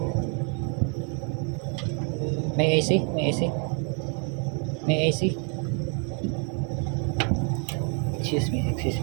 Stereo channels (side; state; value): left; quieter; 39.6 dB